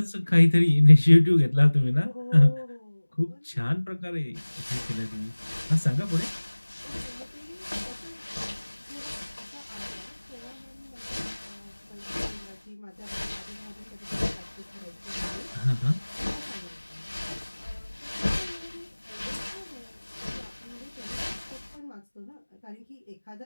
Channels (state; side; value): inverted; both; correlation -1.00